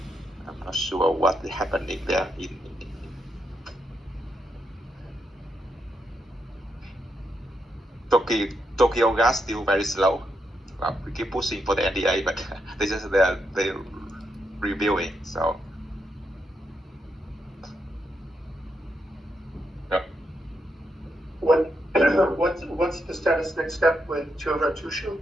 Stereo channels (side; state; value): both; normal; correlation 0.82